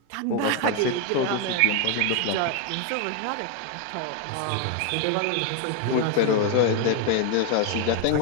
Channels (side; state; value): both; different; correlation 0.01